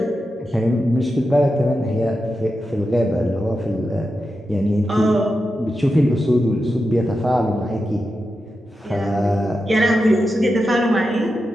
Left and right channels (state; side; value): normal; both; correlation 0.89